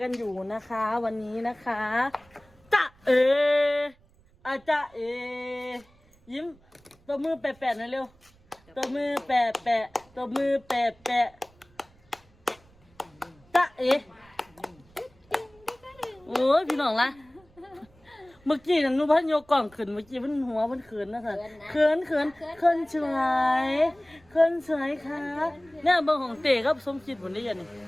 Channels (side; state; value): right; noise; rumble, 30 dB below the sound